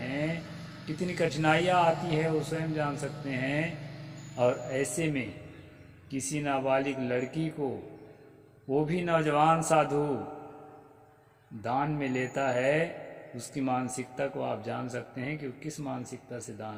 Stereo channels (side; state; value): both; identical; correlation 1.00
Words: कितनी कठिनाइयाँ आती है वो स्वयं जान सकते हैं। और ऐसे में किसी नाबालिग लड़की को, वो भी नौजवान साधु, दान में लेता है, उसकी मानसिकता को आप जान सकते हैं कि वो किस मानसिकता से दान